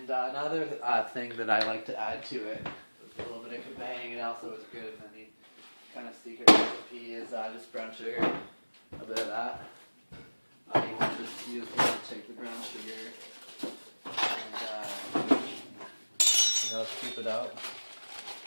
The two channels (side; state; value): both; inverted; correlation -1.00